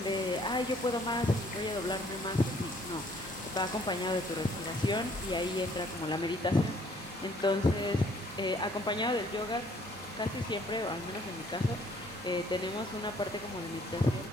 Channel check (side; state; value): both; normal; correlation 0.61